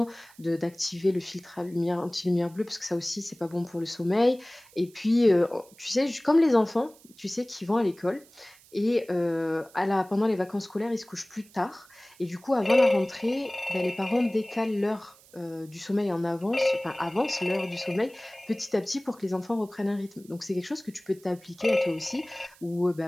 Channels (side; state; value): right; noise; hiss, 26 dB below the sound